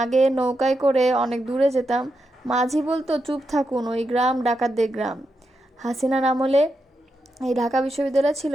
আগে নৌকায় করে অনেক দূরে যেতাম, মাঝি বলতো, চুপ থাকুন, ওই গ্রাম ডাকাতদের গ্রাম। হাসিনার আমলে এই ঢাকা বিশ্ববিদ্যালয় ছিল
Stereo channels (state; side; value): normal; both; correlation 0.85